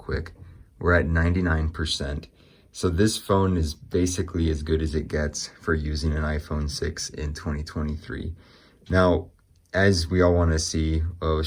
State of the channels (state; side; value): identical; both; correlation 1.00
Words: We're at 99%. So this phone is basically as good as it gets for using an iPhone 6 in 2023. Now, as we all want to see,